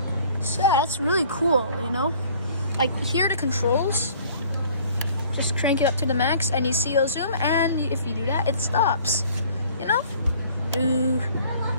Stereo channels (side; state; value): both; inverted; correlation -0.53